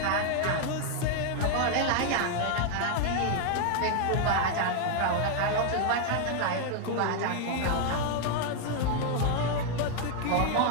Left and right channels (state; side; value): different; both; correlation 0.00